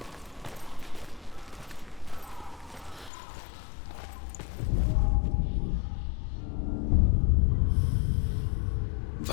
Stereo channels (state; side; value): drops out; right; at 3.1 s